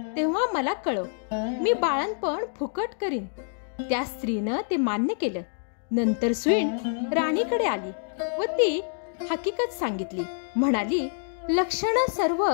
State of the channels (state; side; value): silent; right; digital silence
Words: तेव्हा मला कळव, मी बाळंतपण फुकट करीन। त्या स्त्रीनं ते मान्य केलं। नंतर सुईण राणीकडे आली व ती हकीकत सांगितली। म्हणाली, लक्षणं सर्व